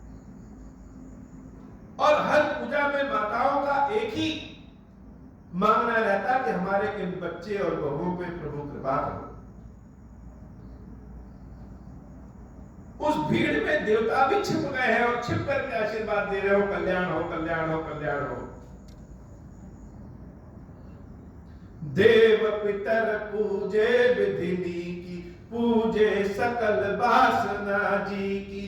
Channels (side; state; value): both; identical; correlation 1.00